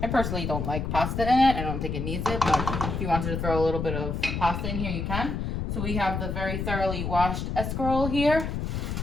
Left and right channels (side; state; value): left; noise; rumble, 3 dB below the sound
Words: I personally don't like pasta in it. I don't think it needs it, but if you wanted to throw a little bit of pasta in here, you can. So we have the very thoroughly washed escarole here.